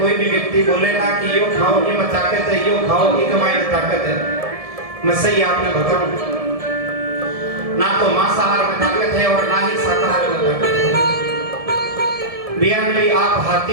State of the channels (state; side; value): late; left; 1.7 ms